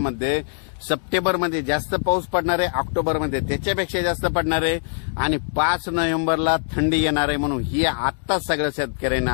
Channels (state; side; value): silent; right; digital silence